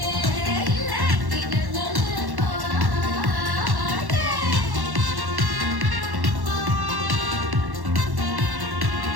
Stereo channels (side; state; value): left; late; 1.1 ms